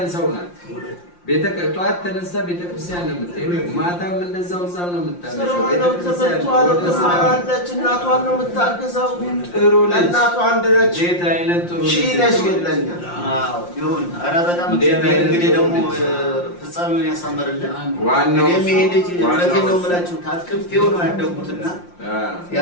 ሰው ናት። ጠዋት ተነሳ ቤተክርስቲያን ነው የምትሄደው፣ ማታም እንደዛው እዛው ነው የምታለቅሰው። እናቷን ነው የምታግዘው። ጥሩ ለእናቷ አንድ ነች። እንዴት አይነት ጥሩ ነሽ ይለኛል። ይሁን። ኧረ በጣም እንግዲህ ደግሞ ፍጻሜውን ያሳምርልን። ዋናው የሚሄድ ልጅ እውነቴን ነው የምላችሁ ታቅፌው ነው ያደግኩትና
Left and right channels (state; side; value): late; right; 5.7 ms